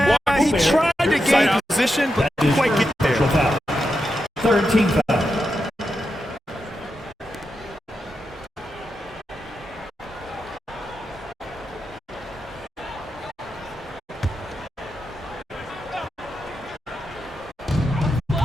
he tried to gain position, but didn't quite get there. Third team foul.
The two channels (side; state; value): both; normal; correlation 0.87